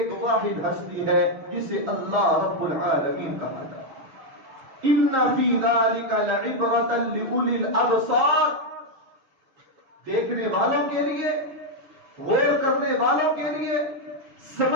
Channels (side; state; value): left; late; 6.6 ms